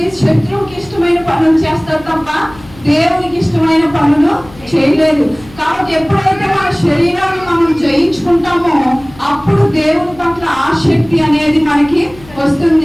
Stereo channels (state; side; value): noise; left; hum, 22 dB below the sound